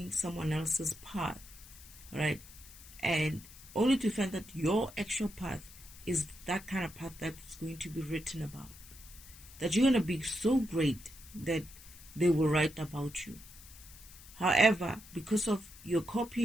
someone else's path, right? And only to find that your actual path is that kind of path that's going to be written about. That you're going to be so great that they will write about you. However, because of you're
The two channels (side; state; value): left; noise; hiss, 19 dB below the sound